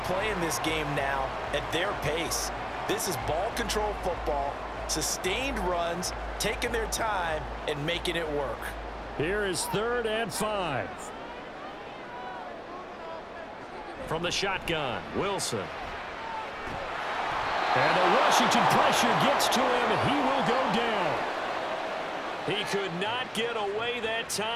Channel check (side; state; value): both; identical; correlation 1.00